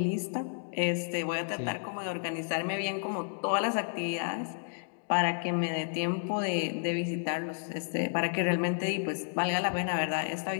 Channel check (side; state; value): right; silent; digital silence